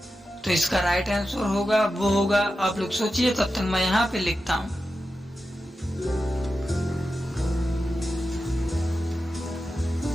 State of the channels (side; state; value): both; normal; correlation 0.91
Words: तो इसका राइट आंसर होगा वो होगा, आप लोग सोचिए तब तक मैं यहाँ पे लिखता हूँ।